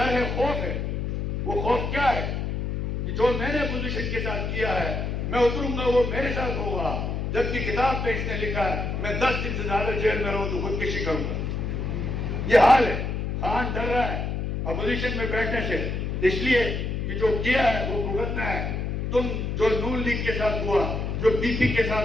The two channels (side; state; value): left; noise; hum, 2 dB below the sound